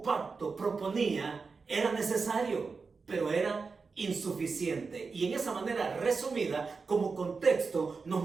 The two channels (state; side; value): quieter; left; 4.7 dB